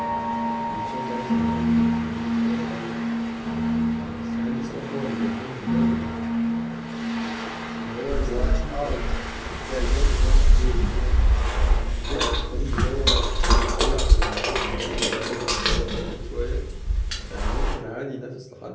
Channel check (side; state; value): both; identical; correlation 1.00